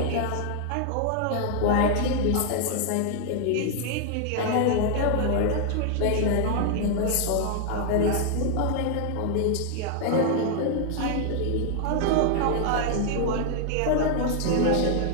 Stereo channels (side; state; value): both; different; correlation 0.00